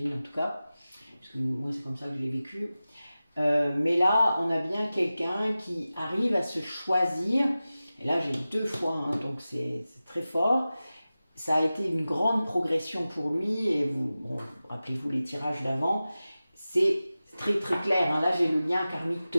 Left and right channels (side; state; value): both; inverted; correlation -0.95